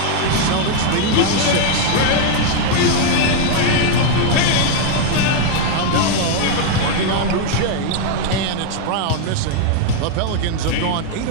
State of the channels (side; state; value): both; different; correlation 0.00